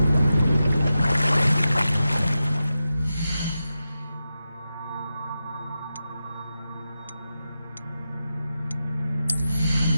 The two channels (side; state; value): both; inverted; correlation -0.91